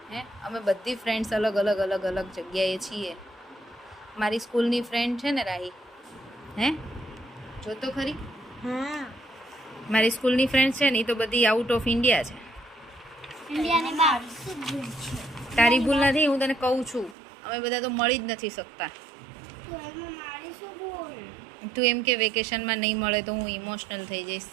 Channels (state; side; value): drops out; left; at 17.2 s